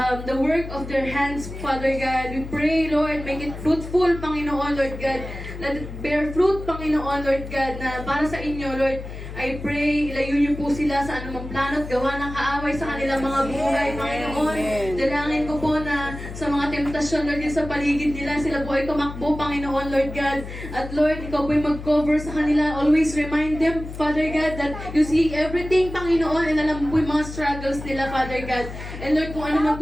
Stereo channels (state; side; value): noise; left; hum, 10 dB below the sound